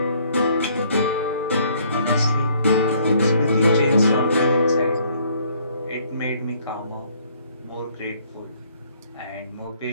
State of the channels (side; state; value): both; inverted; correlation -0.63